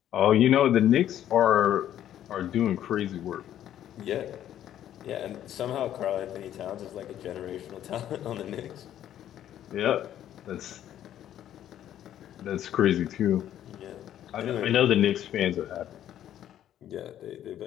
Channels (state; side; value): quieter; right; 11.3 dB